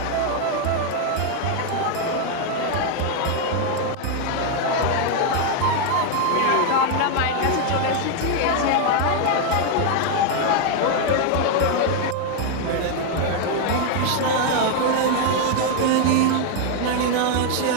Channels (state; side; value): different; both; correlation 0.01